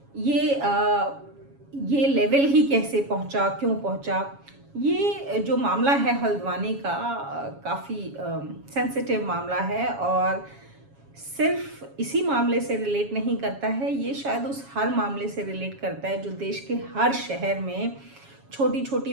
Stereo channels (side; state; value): left; late; 7.2 ms